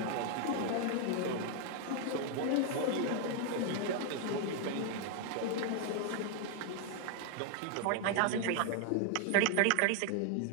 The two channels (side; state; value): both; different; correlation 0.00